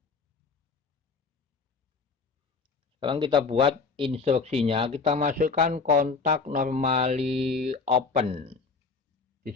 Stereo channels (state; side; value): quieter; right; 4.7 dB